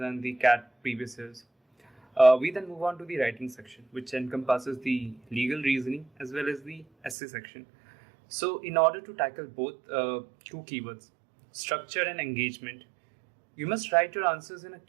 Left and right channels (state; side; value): drops out; left; at 7.2 s